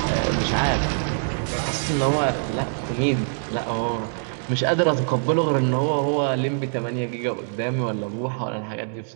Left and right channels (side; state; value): left; silent; digital silence